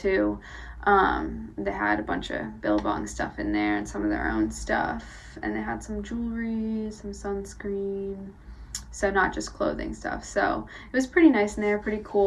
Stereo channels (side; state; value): both; identical; correlation 1.00